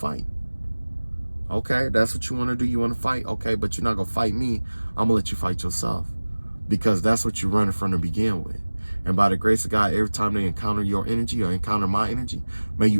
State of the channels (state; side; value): inverted; both; correlation -1.00